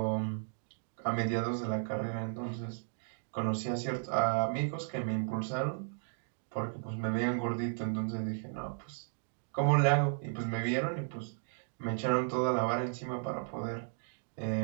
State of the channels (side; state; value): left; silent; digital silence